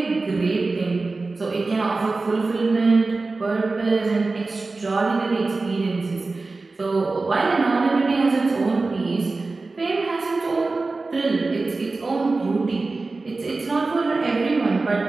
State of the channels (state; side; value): quieter; left; 3.6 dB